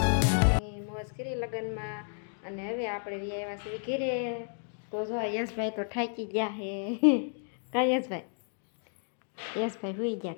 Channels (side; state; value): right; silent; 57 dB below the other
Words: મોજ કરી લગ્નમાં અને હવે આપણે આવ્યા છીએ ઘરે તો જો યશભાઈ તો ઠાકી ગયા હે કા યશભાઈ હુઈ ગયા